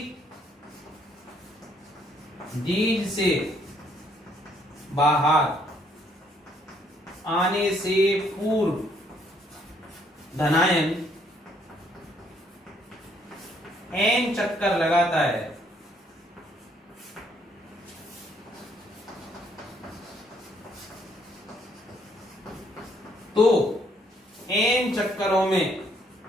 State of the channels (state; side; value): normal; both; correlation 0.68